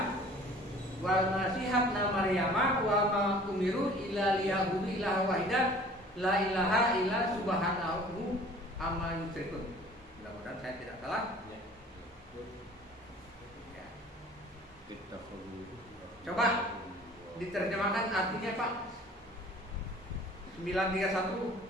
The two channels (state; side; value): normal; both; correlation 0.49